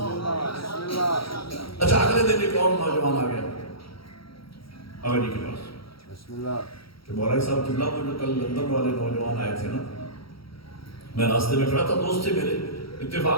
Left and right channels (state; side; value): late; right; 0.75 ms